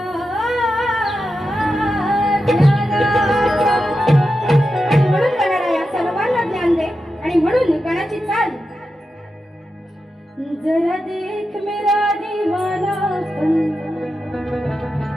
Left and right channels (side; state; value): both; normal; correlation 0.89